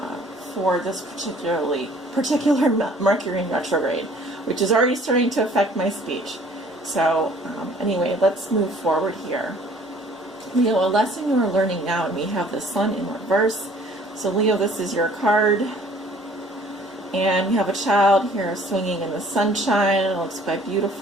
for this particular Mercury in retrograde, which is already starting to affect my speech. So anyway, let's move forward here. Leo, a lesson you are learning now, and we have the Sun in reverse. So Leo, this is your card. And we have a child here swinging in the sunshine. It looks quite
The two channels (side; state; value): both; normal; correlation 0.55